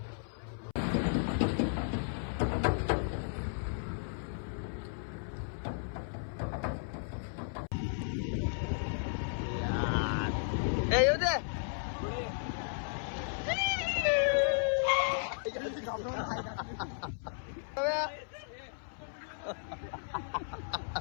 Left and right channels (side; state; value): right; silent; 55 dB below the other